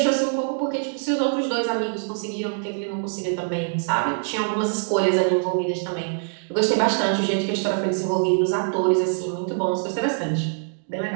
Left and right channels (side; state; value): left; silent; digital silence